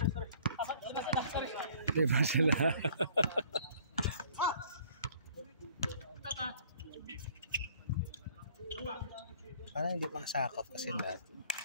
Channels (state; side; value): inverted; both; correlation -0.55